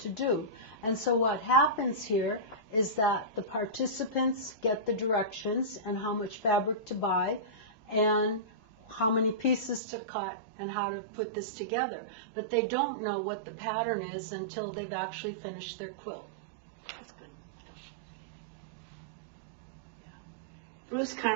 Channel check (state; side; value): drops out; left; at 9.8 s